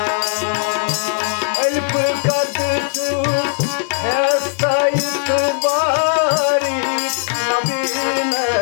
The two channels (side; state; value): right; silent; 67 dB below the other